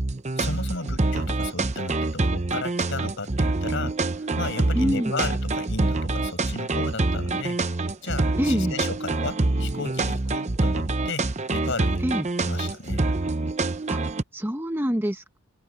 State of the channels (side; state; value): both; normal; correlation 0.66